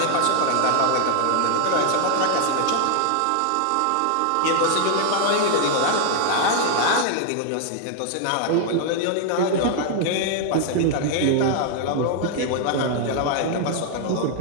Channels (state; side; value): different; both; correlation 0.00